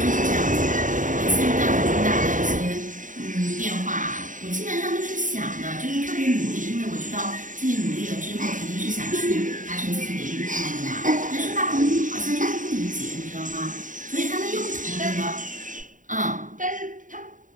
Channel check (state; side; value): late; left; 0.38 ms